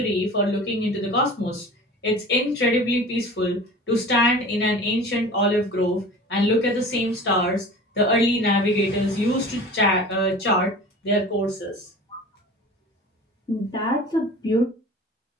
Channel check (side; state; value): both; normal; correlation 0.39